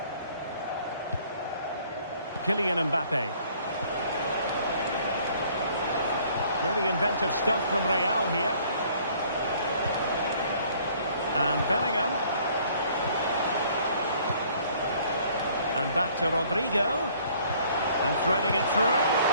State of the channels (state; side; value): inverted; both; correlation -0.58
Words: Kylian Mbappe. Really inventive stuff from Real here. And Bellingham. And back to Rodrigo. And threading it through.